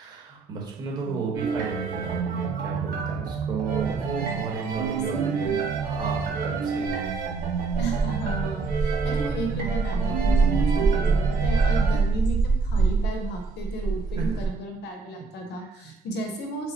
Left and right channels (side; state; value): left; quieter; 4.2 dB